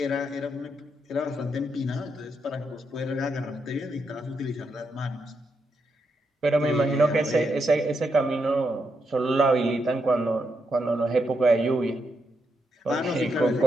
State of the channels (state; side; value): normal; both; correlation 0.82